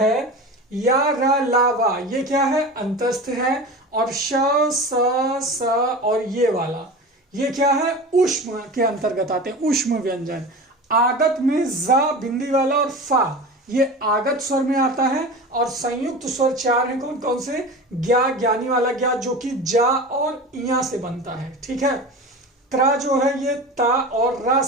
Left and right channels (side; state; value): both; normal; correlation 0.31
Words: या रा ला वा, ये क्या है? अंतस्थ है। और श स और ये वाला ये क्या है? ऊष्म के अंतर्गत आते हैं, ऊष्म व्यंजन। आगत में जा बिंदी वाला और फा, ये आगत स्वर में आता है। और संयुक्त स्वर चार हैं, कौन कौन से? ज्ञा, ज्ञानी वाला ज्ञा, जो कि जा और इया से बनता है, ठीक है। त्रा जो है ये ता और रा